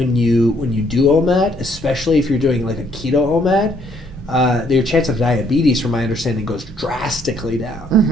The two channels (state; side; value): normal; both; correlation 0.66